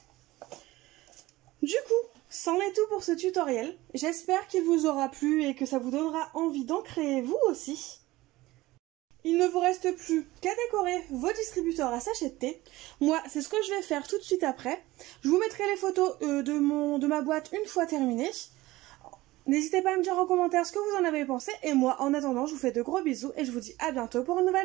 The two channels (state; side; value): quieter; left; 18.6 dB